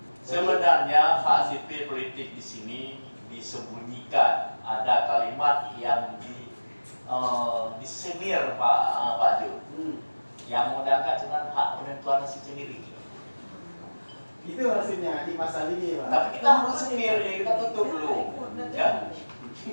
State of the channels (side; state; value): both; inverted; correlation -1.00